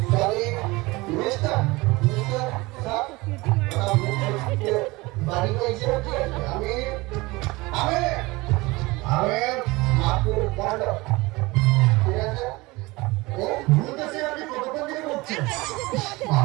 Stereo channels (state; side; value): quieter; left; 22.5 dB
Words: সরি মিস্টার স্যার বাড়ি কইছে আমি আমি আমি মাকুর বন্ধ। ঠিক আছে বলতেছে আপনি কতক্ষণ থেকে বলছেন?